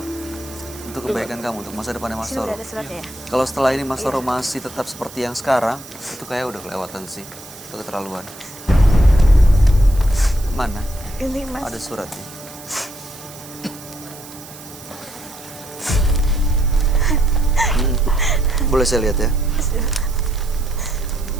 Untuk kebaikan kamu, untuk masa depannya Mas Sini Toro. udah ada suratnya ya. Kalau setelah ini Mas Toro masih tetap seperti yang sekarang, itu kayak udah kelewatan sih. Itu keterlaluan. Mana? Ini, Mas. Ada suratnya. Boleh saya lihat ya?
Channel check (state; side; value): noise; right; hiss, 17 dB below the sound